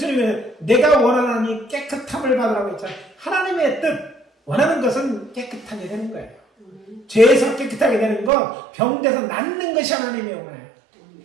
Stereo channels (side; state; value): left; drops out; at 8.3 s